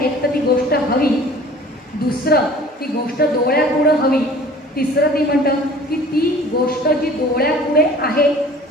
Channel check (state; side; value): normal; both; correlation 0.47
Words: तर ती गोष्ट हवी, दुसरं ती गोष्ट डोळ्यापुढं हवी, तिसरं ती म्हणतं की ती गोष्ट जी डोळ्यापुढे आहे